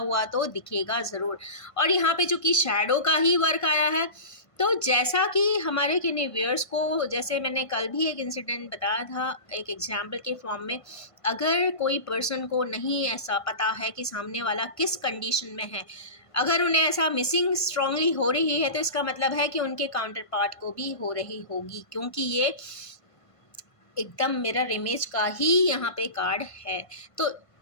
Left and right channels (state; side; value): late; right; 1.5 ms